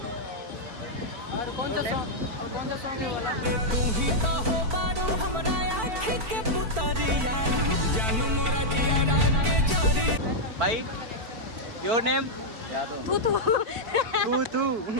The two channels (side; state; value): left; late; 4.5 ms